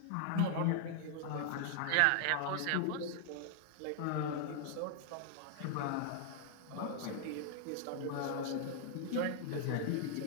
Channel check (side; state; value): both; different; correlation 0.00